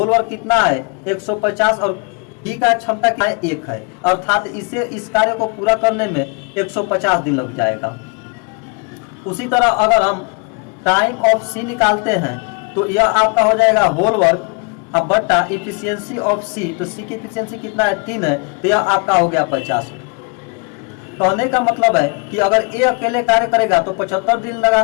वर्क कितना है 150 और बी का क्षमता क्या है 1 है, अर्थात इस कार्य को पूरा करने में 150 दिन लग जाएगा। उसी तरह अगर हम टाइम ऑफ सी निकालते हैं तो यह आपका हो जाएगा होल वर्क अब बट्टा इफिशियंसी ऑफ सी, तो सी की इफिशियंसी कितना है 3 है, तो यह आपका हो गया 50। कहने का मतलब है कि अगर ए अकेले कार्य करेगा तो 75 दिन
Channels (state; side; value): quieter; right; 33.4 dB